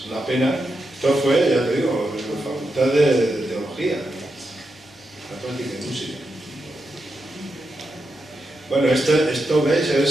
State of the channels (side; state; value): both; normal; correlation 0.86